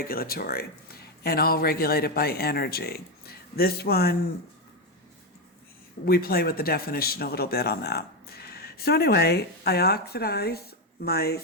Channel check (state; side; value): normal; both; correlation 0.08